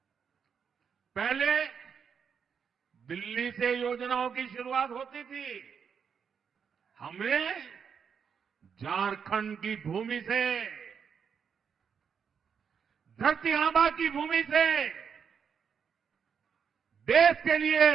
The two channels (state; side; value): quieter; left; 6.9 dB